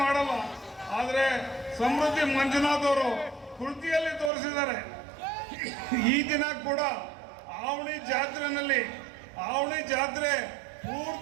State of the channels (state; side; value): drops out; left; at 4.3 s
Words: ಮಾಡಲ್ಲ. ಆದರೆ ಸಮೃದ್ಧಿ ಮಂಜುನಾಥ್ ಅವರು ಕೃತಿಯಲ್ಲಿ ತೋರಿಸಿದ್ದಾರೆ. ಈ ದಿನ ಕೂಡ ಆವಣಿ ಜಾತ್ರೆ